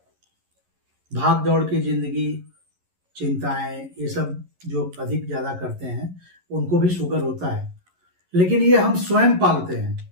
भाग दौड़ की जिंदगी, चिंताएं, ये सब जो अधिक ज्यादा करते हैं उनको भी शुगर होता है। लेकिन ये हम स्वयं पालते हैं।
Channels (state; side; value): late; left; 11 ms